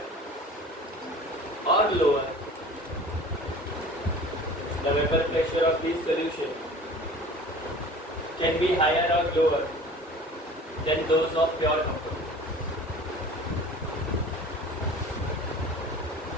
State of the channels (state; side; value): normal; both; correlation 0.43